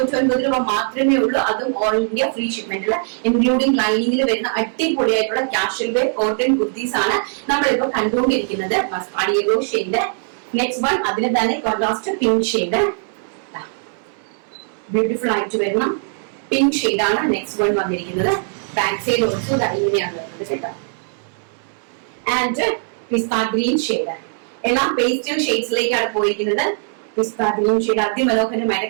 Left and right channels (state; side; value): silent; left; 65 dB below the other